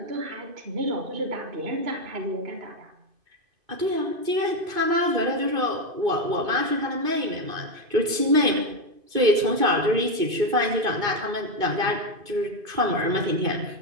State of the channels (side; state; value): left; late; 2.5 ms